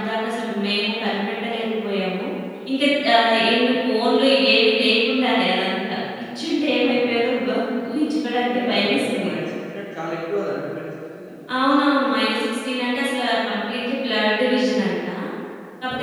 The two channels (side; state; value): both; identical; correlation 1.00